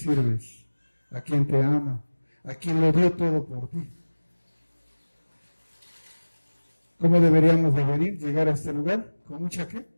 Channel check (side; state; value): both; inverted; correlation -1.00